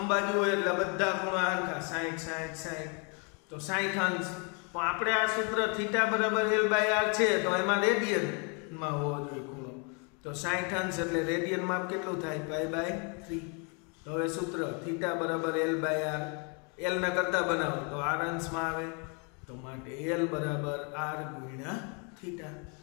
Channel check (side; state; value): right; quieter; 35.8 dB